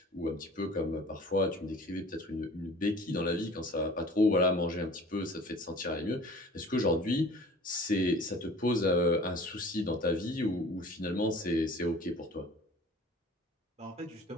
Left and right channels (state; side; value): normal; both; correlation 0.46